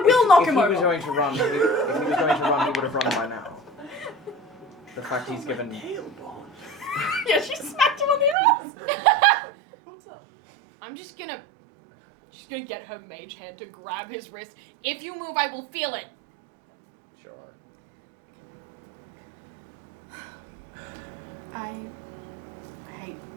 will knock if him he over. was going to run, if he was going to run, he would have run by now. The fact he's given. Yeah, she smacked him on the ass. What's up? I'm just gonna get her mage hand to grab his wrist. If you move, I will feel it. Sure. I hate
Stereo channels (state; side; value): drops out; left; at 8.3 s